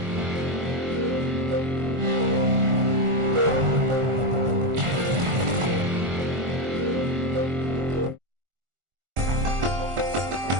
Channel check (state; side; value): late; left; 1.4 ms